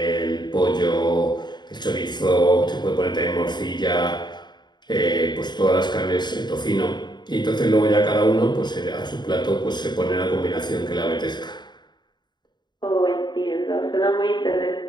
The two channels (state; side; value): late; right; 0.21 ms